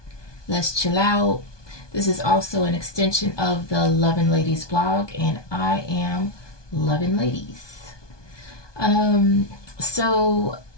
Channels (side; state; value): right; late; 1.2 ms